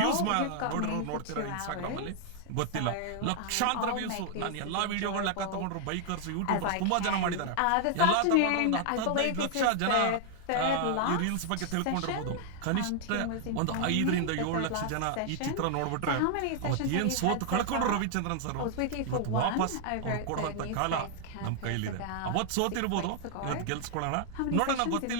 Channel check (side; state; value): both; different; correlation 0.00